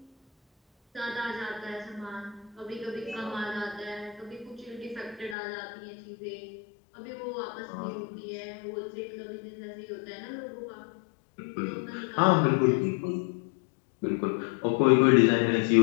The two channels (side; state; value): right; drops out; at 5.4 s